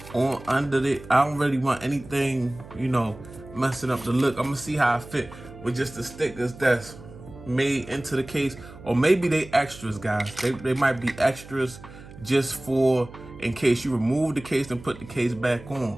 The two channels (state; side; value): noise; right; hum, 17 dB below the sound